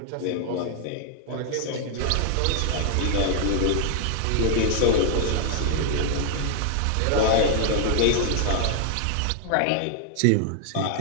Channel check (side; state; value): both; different; correlation 0.00